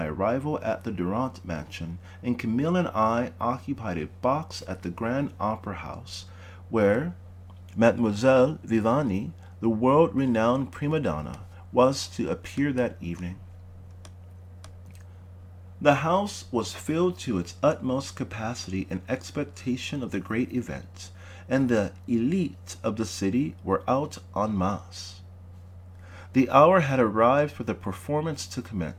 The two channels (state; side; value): identical; both; correlation 1.00